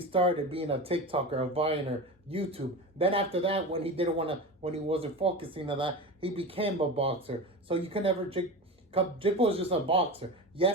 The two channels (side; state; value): both; normal; correlation 0.26